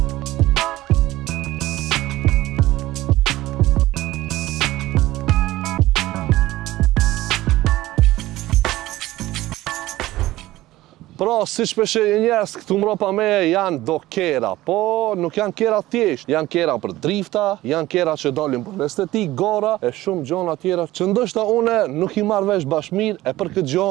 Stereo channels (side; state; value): left; quieter; 16.7 dB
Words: Pra, si shpeshe njerëz këtu mbrapa me janë do kera, po nuk janë kera thjesht, janë kera për drifta, janë kera që dalin për estetik, gara e shumë gjona tjera që ndoshta une nuk i marr vesh bashmir e për këtë gjë